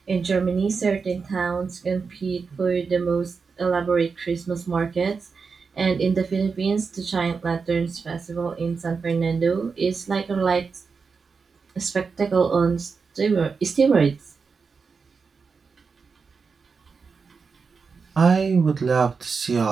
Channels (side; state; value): left; quieter; 5.1 dB